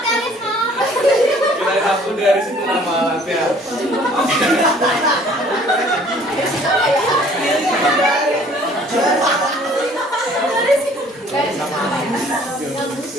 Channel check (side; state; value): both; normal; correlation 0.55